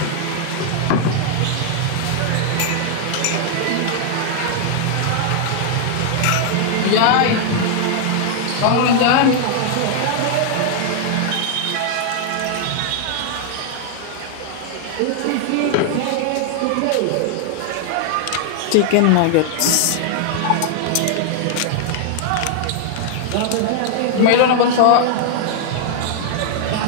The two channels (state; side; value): different; both; correlation 0.00